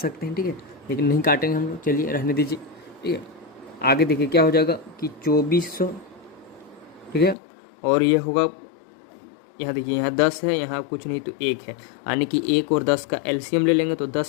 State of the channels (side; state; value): right; drops out; at 7.4 s